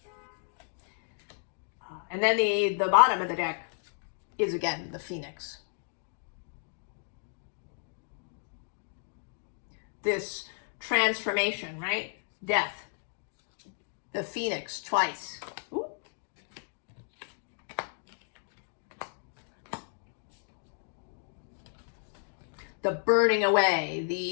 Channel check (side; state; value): right; silent; digital silence